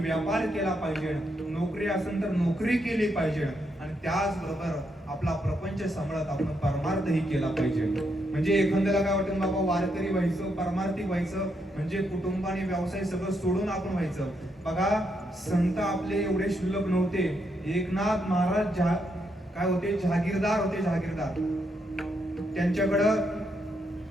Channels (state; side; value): normal; both; correlation 0.79